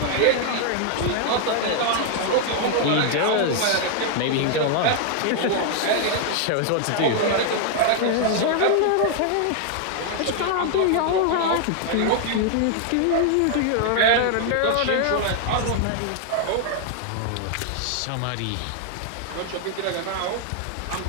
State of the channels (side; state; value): both; different; correlation 0.00